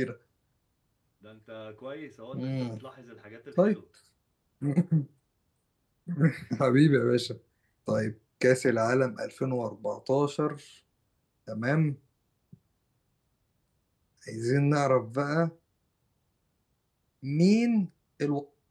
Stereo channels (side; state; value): both; identical; correlation 1.00